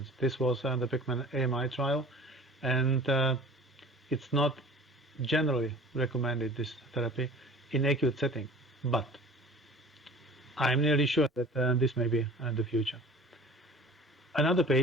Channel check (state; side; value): normal; both; correlation 0.44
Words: This was the Pickman AMI trial, and it's not generally recommended, this therapy, in acute setting, but I'm nearly sure that this may be the future. Another